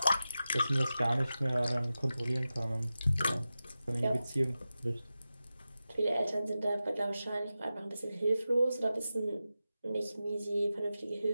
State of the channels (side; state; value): both; inverted; correlation -0.93